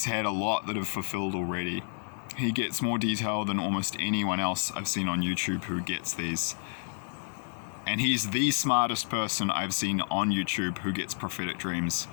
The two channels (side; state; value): right; silent; 58 dB below the other